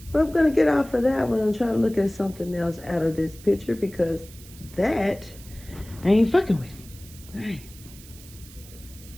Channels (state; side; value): noise; right; hiss, 20 dB below the sound